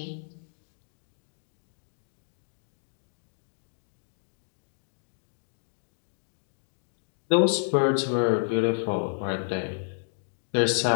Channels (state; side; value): silent; right; digital silence